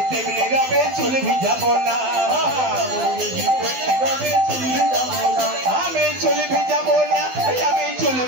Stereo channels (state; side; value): late; left; 12 ms